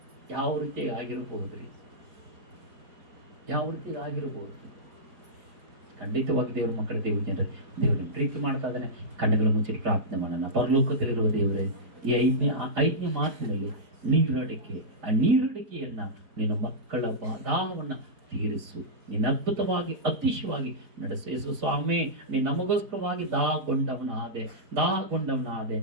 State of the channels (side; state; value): left; late; 4.5 ms